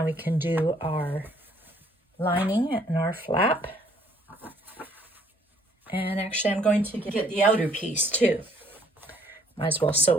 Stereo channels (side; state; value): both; normal; correlation 0.63